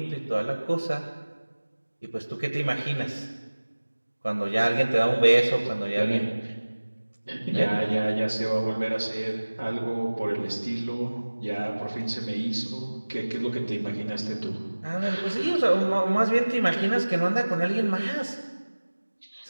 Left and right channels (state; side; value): inverted; both; correlation -1.00